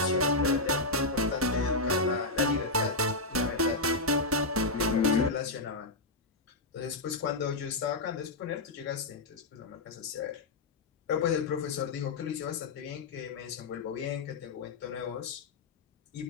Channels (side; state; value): right; quieter; 3.1 dB